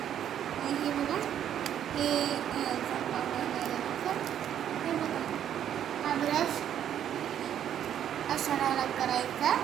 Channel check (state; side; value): quieter; left; 10.0 dB